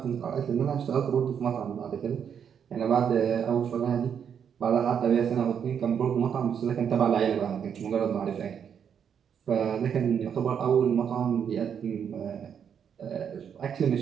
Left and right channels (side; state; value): left; quieter; 7.9 dB